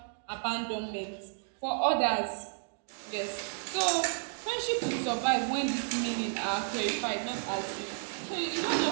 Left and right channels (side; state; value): left; silent; digital silence